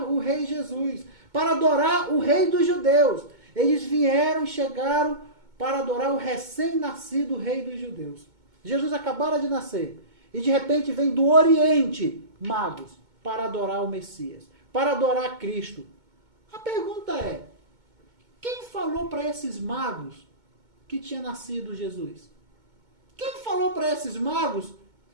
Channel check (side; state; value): left; late; 2.2 ms